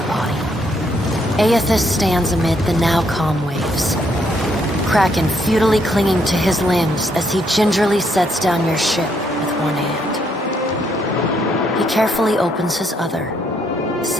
body. Aethys stands amid the now calm waves. Kraken futilely clinging to his limbs as he gingerly sets down your ship with one hand. He carefully opens his other,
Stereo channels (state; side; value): normal; both; correlation 0.72